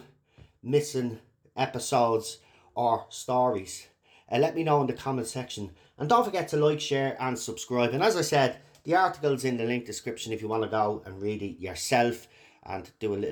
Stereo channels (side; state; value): both; identical; correlation 1.00